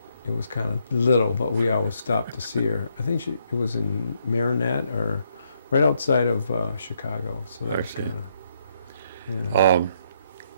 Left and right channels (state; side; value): inverted; both; correlation -0.74